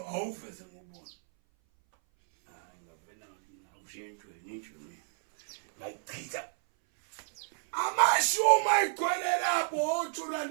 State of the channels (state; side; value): silent; left; 57 dB below the other